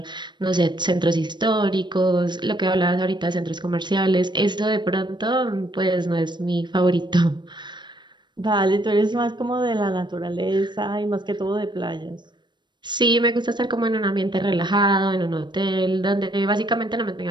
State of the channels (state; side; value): late; left; 0.22 ms